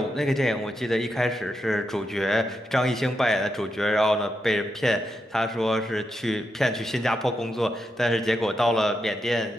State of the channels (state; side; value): normal; both; correlation 0.85